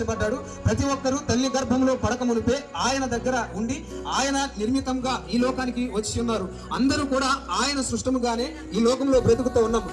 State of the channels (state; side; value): identical; both; correlation 1.00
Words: ప్రతి ఒక్కరూ తల్లి గర్భంలో పడక మునిపే ఆయన దగ్గర ఉండి ఆయన నిర్మితంగా ఈ లోకానికి వచ్చి ఉన్నారు. అందరూ కూడా ఆయన సృష్టముగానే ఈ లోకంలో బ్రతుకుతూ ఉన్నాం.